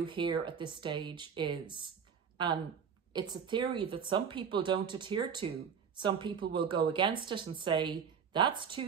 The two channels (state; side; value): quieter; left; 6.9 dB